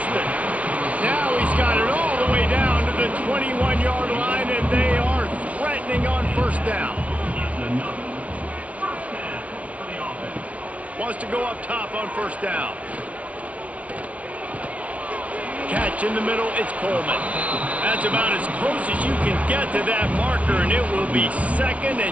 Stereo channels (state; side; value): late; left; 0.066 ms